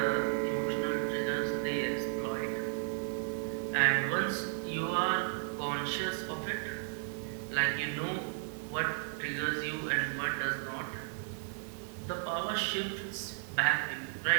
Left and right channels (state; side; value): silent; left; digital silence